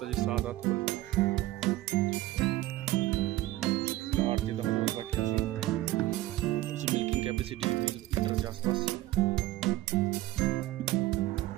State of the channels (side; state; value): left; quieter; 16.4 dB